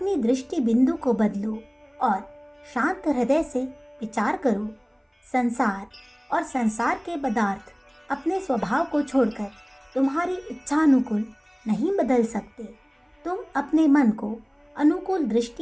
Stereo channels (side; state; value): both; identical; correlation 1.00